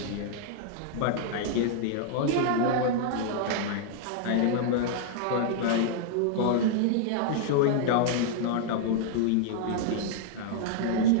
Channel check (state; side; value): different; both; correlation -0.01